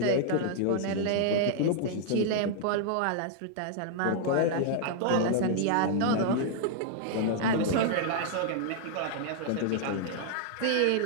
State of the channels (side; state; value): both; different; correlation -0.01